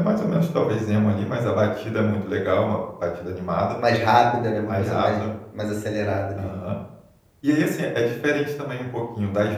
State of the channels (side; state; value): both; identical; correlation 1.00